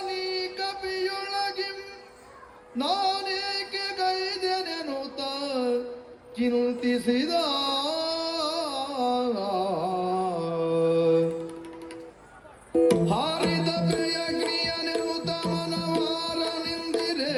ಕಪಿಯೊಳಗಿಂ ನಾನೇಕೆ ಗೈದೆನೆನುತ ಚಿಂತಿಸಿದ ಹಾರಿದ ಪ್ರಿಯಗ್ನಿಯನೆನುತ ಮನವಾರ ನಿಂದಿರೆ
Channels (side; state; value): both; identical; correlation 1.00